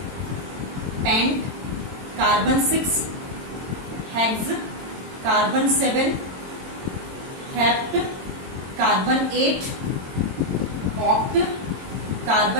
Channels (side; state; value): left; late; 22 ms